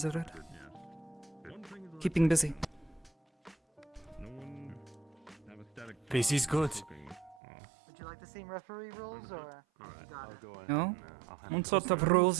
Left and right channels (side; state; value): left; drops out; at 7.4 s